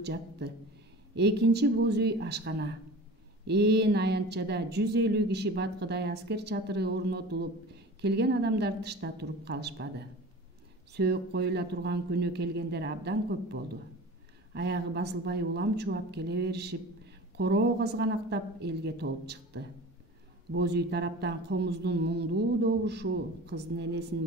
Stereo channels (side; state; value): both; normal; correlation 0.37